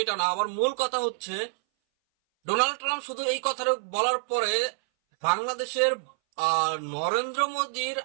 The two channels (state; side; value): silent; left; 59 dB below the other